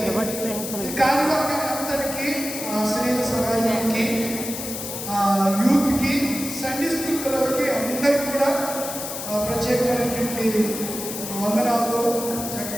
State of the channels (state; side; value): noise; left; hiss, 7 dB below the sound